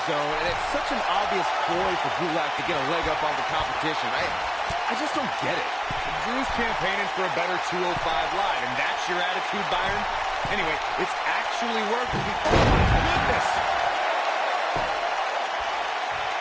zone, and it's such an obvious ploy for Gulak to get a leg up on the competition. I just don't get it. Drew's campaigning for a better 205 live, and that's your attitude, Byron? Anyway, it's actually working. Oh, my goodness!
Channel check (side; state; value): both; identical; correlation 1.00